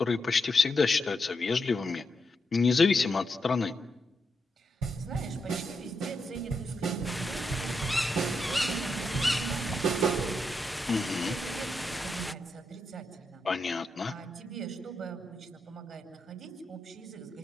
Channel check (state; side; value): normal; both; correlation 0.84